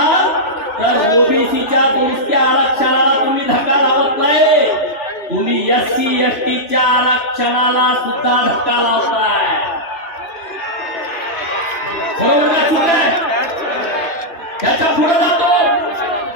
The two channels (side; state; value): right; late; 2.9 ms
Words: तर ओबीसीच्या दुरुस्त्या आरक्षणाला तुम्ही धक्का लावत नाही, तुम्ही एससी एसटीच्या आरक्षणाला सुद्धा धक्का लावताय. बरोबर का? चूक आहे. त्याच्या पुढे जातो,